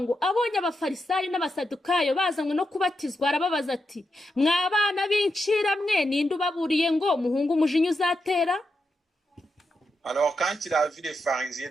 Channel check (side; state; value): both; normal; correlation 0.86